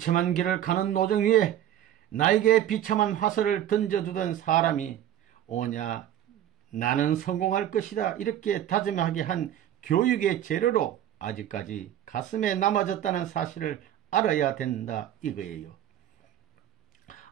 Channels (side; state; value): left; quieter; 11.5 dB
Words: 길을 가는 노정 위에 나에게 비참한 화살을 던져두던 사람이 오냐 나는 성공할 것이다 이렇게 다짐하게 한 교육의 재료로 아직까지 가슴에 남아졌다는 사실을 알아야 된다 이거예요.